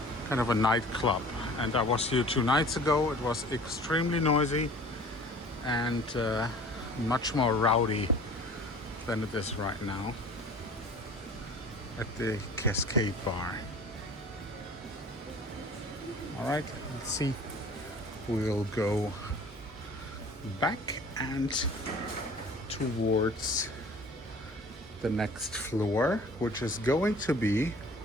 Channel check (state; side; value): normal; both; correlation 0.45